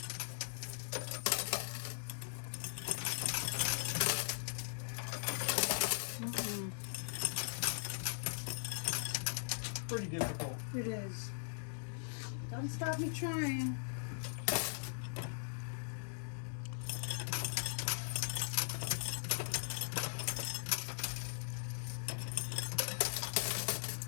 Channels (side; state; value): right; silent; digital silence